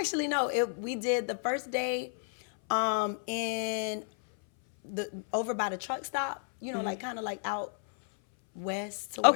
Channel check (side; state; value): right; silent; 57 dB below the other